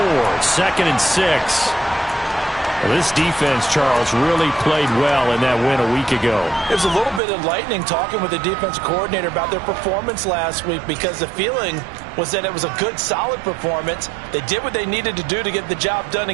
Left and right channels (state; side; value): drops out; left; at 7.2 s